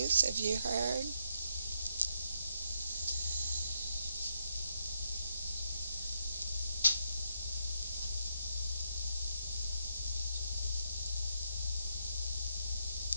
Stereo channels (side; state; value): both; inverted; correlation -0.78